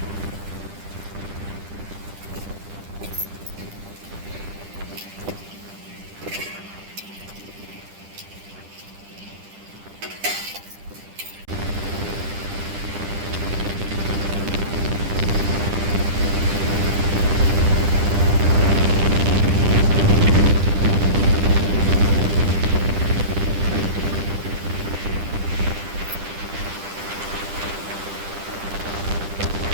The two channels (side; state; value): left; late; 10 ms